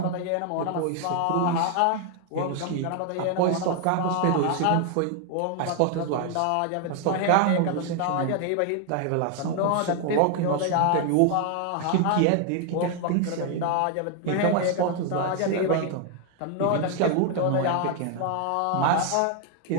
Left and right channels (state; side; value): different; both; correlation 0.00